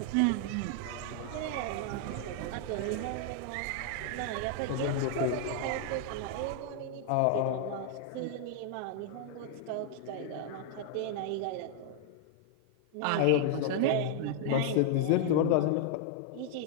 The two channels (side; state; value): both; different; correlation 0.00